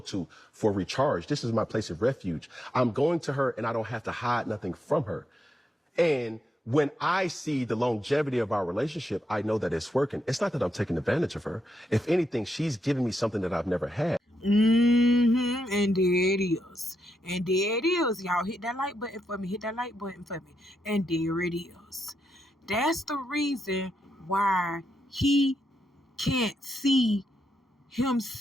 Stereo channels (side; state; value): both; normal; correlation 0.83